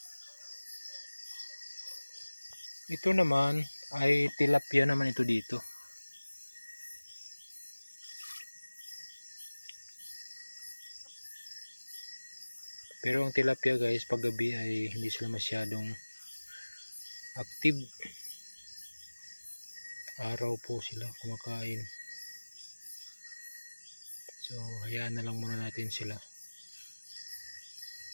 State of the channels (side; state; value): both; inverted; correlation -1.00